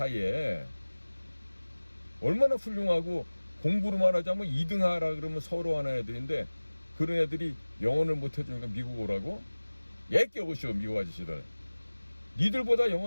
얼마나 훌륭하고 공부로만 하자면 2등 하라 그러면 서로 하는 애들인데 그런 애들이 영어를 못해주니까 미국 오라고? 얘끼 오시오 미국 아저씨들. 니들보다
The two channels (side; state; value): both; inverted; correlation -1.00